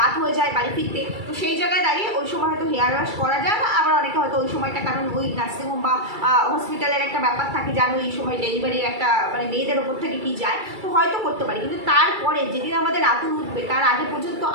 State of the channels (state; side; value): late; left; 2.3 ms